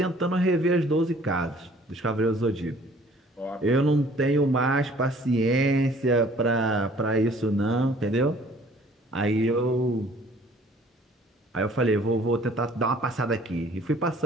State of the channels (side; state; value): both; normal; correlation 0.55